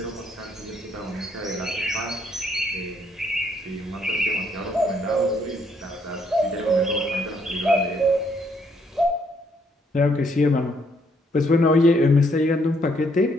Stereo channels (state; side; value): normal; both; correlation 0.70